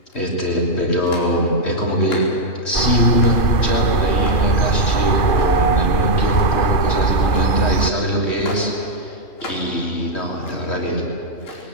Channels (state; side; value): late; right; 3.1 ms